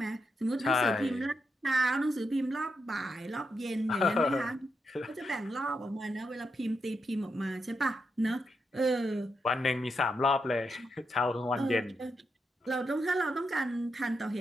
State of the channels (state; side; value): normal; both; correlation 0.84